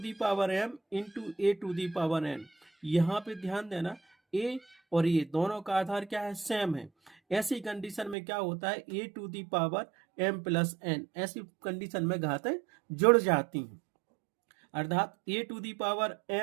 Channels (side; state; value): left; drops out; at 8.2 s